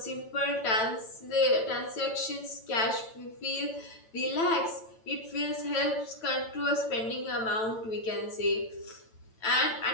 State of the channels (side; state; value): right; late; 9.0 ms